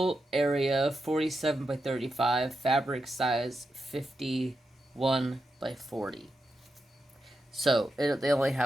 area 47 by 35, fabric size 51 by 40. So they only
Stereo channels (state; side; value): normal; both; correlation 0.87